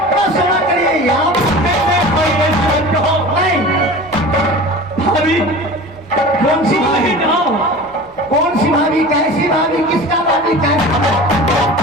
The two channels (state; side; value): normal; both; correlation 0.36